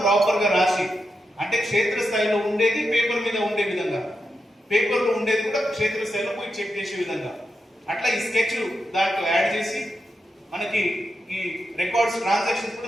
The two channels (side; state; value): both; normal; correlation 0.87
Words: ప్రాపర్ గా రాసి, అంటే క్షేత్రస్థాయిలో ఉండేది పేపర్ మీద ఉండే విధంగా, పేపర్ లో ఉండేది కూడా క్షేత్రస్థాయిలో పోయి చెక్ చేసే విధంగా అట్లా ఈ స్కెచ్ దాంట్లో యాడ్ చేసి మనకి ఈ రికార్డ్స్ ట్రాన్సాక్షన్స్